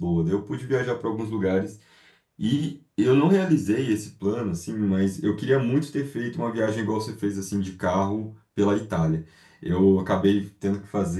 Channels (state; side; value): identical; both; correlation 1.00